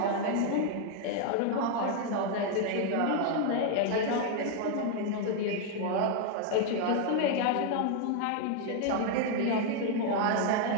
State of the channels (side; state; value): both; different; correlation 0.00